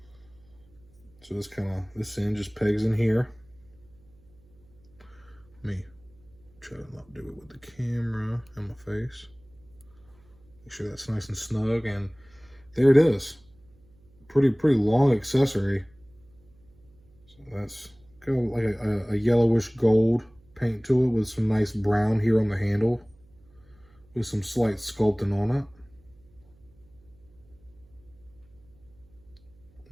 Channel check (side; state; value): right; noise; hum, 29 dB below the sound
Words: So this end just pegs in here. Let me try to not do it with the camera in my face. Make sure that's nice and snug, and there it is. Pretty long accessory. So that's got like a yellowish gold paint to it with some nice brown here on the handle with some slight sculpting on it.